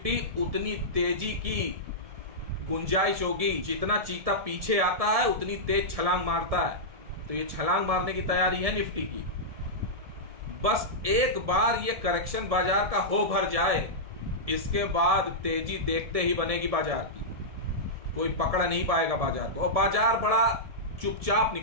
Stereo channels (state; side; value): late; left; 1.7 ms